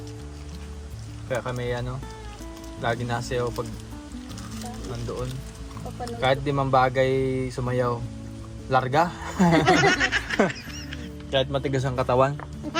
Kaya kami ano, lagi nasayaw pag nandoon. Papanood. Kahit di man bagay sumayaw, larga. Kahit matigas ang katawan.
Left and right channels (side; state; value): both; identical; correlation 1.00